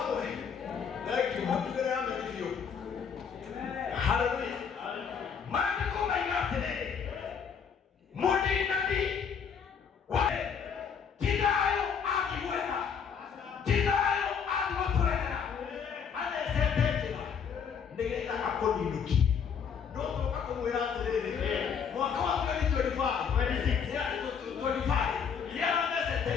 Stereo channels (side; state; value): right; quieter; 6.8 dB